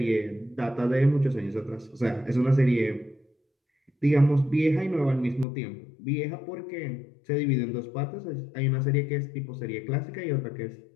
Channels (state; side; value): drops out; right; at 5.5 s